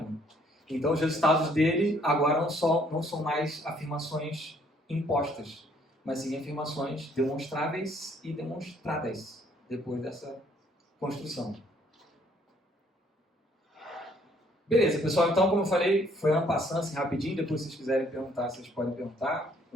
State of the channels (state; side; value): normal; both; correlation 0.64